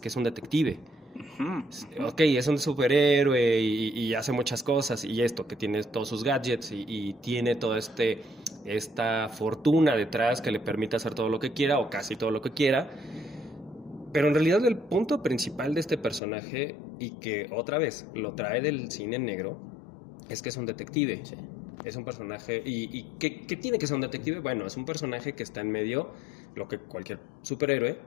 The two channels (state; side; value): drops out; right; at 16.2 s